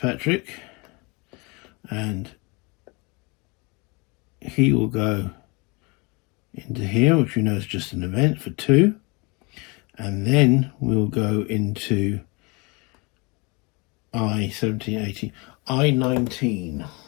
and he will go into here, which we know is just an event for 2. And then we'll go into I-17, 18, I-19.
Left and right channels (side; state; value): right; quieter; 28.4 dB